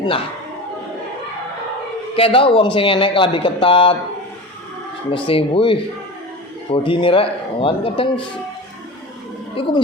Kayak tau wong sing enek klambi ketat mesti wih bodi ini rek, kan kadang itu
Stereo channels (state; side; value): normal; both; correlation 0.30